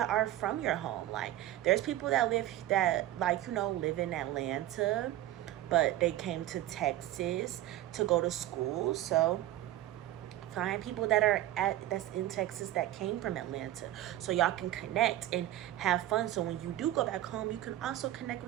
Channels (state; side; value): quieter; left; 14.1 dB